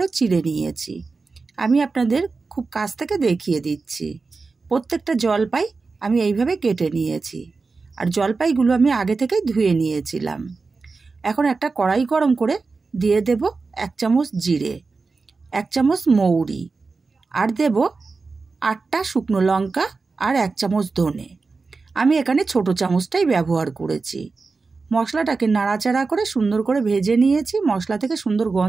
চিড়ে নিয়েছি। আমি আপনাদের খুব কাছ থেকে দেখিয়ে দিচ্ছি। প্রত্যেকটা জলপাই আমি এইভাবে কেটে নিয়েছি, আর জলপাইগুলো আমি আগে থেকেই ধুয়ে নিয়েছিলাম। এখন একটা কড়াই গরম করে দিয়ে দেব 1 চামচ জিরে, 1 চামচ মৌরি, আর দেব 8টা শুকনো লঙ্কা আর 1 চামচ ধনে। আমি এখানে ছোট চামচটাই ব্যবহার করেছি। মশলাটাকে নাড়াচাড়া করে সুন্দর করে ভেজে নিয়েছি। মশলা থেকে সুন্দর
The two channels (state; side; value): quieter; left; 4.2 dB